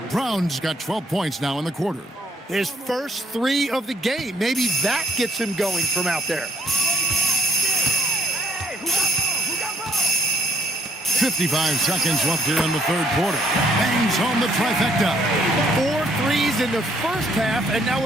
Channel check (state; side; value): normal; both; correlation 0.67